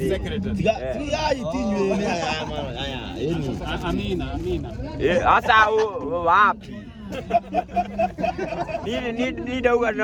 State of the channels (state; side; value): identical; both; correlation 1.00